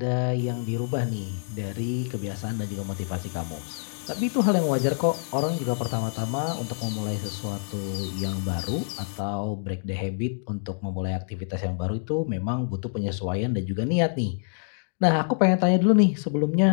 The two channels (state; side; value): silent; right; digital silence